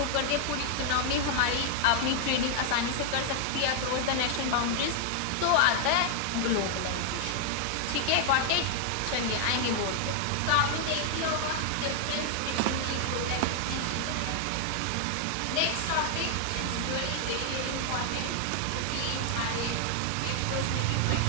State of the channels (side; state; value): both; different; correlation 0.00